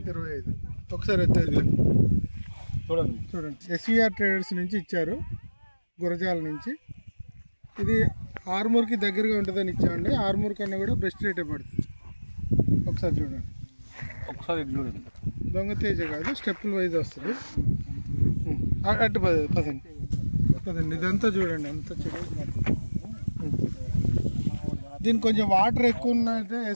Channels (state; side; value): inverted; both; correlation -1.00